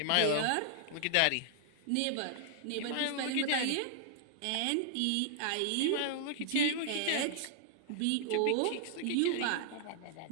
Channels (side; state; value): both; different; correlation -0.01